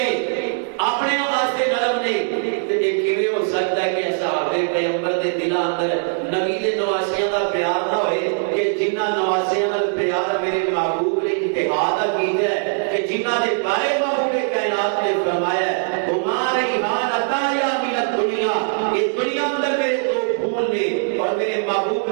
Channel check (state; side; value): silent; left; digital silence